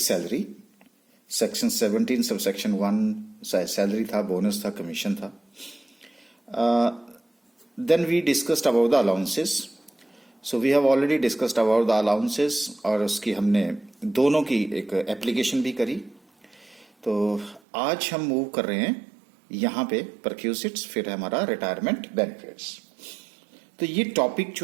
salary, section 17 sub section 1 salary था, बोनस था, कमीशन था. Then we discussed about the allowances. So we have already discussed about the allowances और उसकी हमने दोनों की एक एप्लीकेशन भी करी. तो आज हम मूव कर रहे हैं यहाँ पे परक्यूसिट्स, फिर हमारा रिटायरमेंट बेनिफिट्स. तो ये टॉपिक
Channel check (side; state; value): left; drops out; at 17.6 s